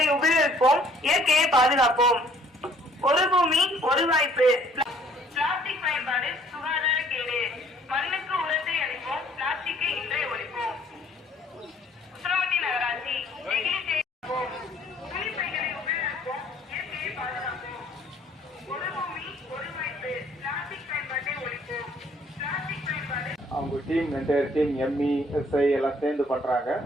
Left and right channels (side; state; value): both; normal; correlation 0.60